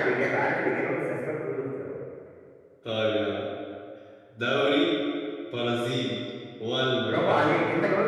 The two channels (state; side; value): identical; both; correlation 1.00